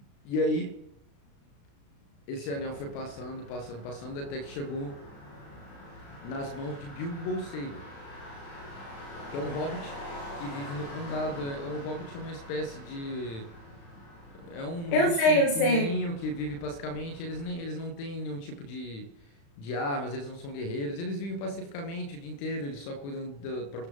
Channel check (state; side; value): late; right; 36 ms